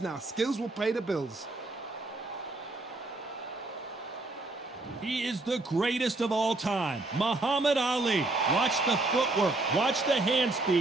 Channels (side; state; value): left; quieter; 3.0 dB